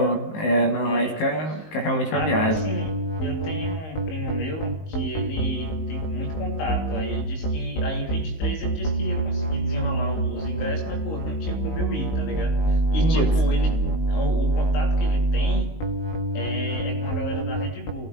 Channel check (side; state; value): right; late; 19 ms